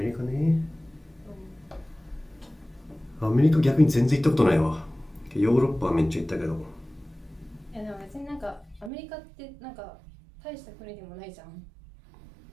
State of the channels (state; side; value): drops out; left; at 8.9 s